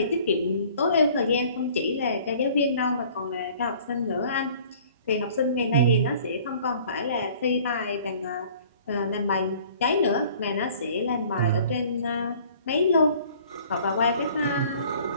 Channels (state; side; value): inverted; both; correlation -0.52